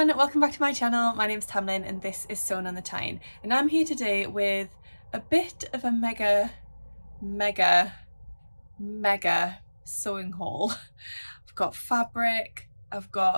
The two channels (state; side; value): inverted; both; correlation -1.00